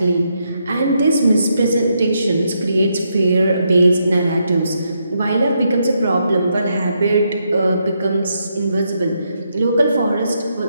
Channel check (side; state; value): both; inverted; correlation -0.79